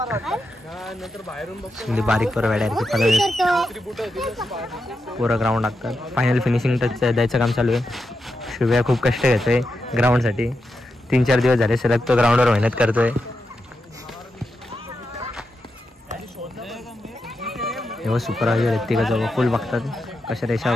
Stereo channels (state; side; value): normal; both; correlation 0.87